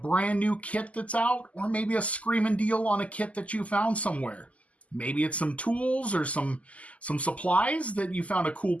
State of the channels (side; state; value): right; late; 0.068 ms